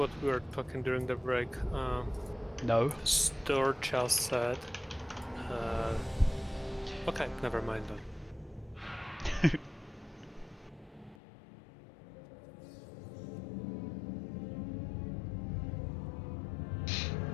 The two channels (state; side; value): drops out; right; at 11.2 s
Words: we were talking during the break. No. Storch just said. Okay, never mind then.